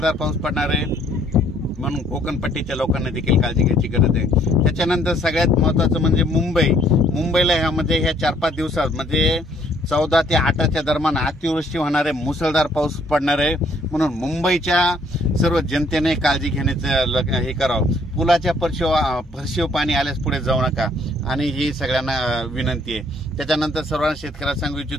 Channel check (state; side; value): normal; both; correlation 0.64